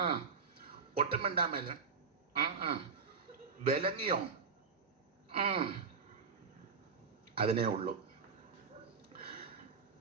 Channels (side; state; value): left; quieter; 5.4 dB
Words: ഒട്ടും മിണ്ടാൻ മേലെ വിലങ്ങിയോ? അതിനേ ഉള്ളൂ.